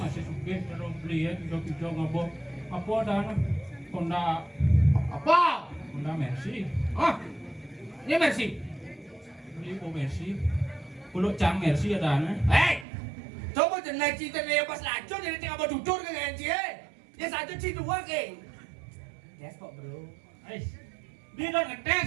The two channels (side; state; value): left; drops out; at 12.9 s